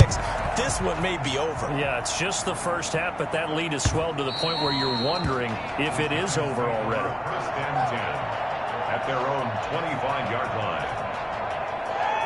This one may be over. Yeah, it's just the first half, but that lead has swelled to the point where you're wondering if it is over already. First and 10 at their own 25-yard line.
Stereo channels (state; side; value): identical; both; correlation 1.00